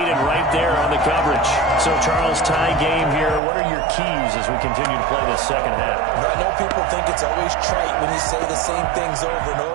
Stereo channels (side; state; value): left; drops out; at 3.4 s